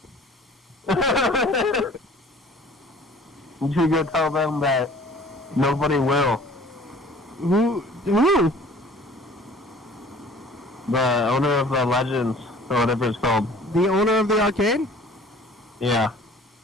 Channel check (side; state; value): both; normal; correlation 0.49